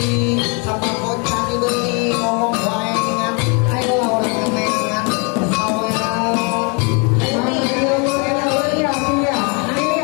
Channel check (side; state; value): right; quieter; 33.8 dB